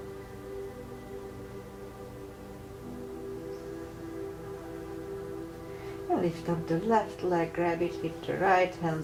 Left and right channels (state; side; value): identical; both; correlation 1.00